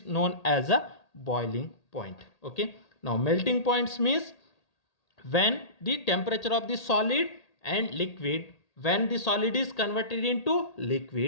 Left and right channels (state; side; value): late; right; 1.8 ms